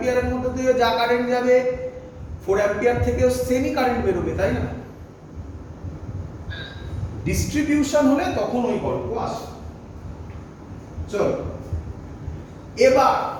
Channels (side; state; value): both; identical; correlation 1.00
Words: মধ্যে দিয়ে যা কারেন্ট যাবে 4 অ্যাম্পিয়ার থেকেও সেমই কারেন্ট বেরোবে, তাই না? ডিস্ট্রিবিউশন হলে তখন ওই গল্প আসে। চলো এবার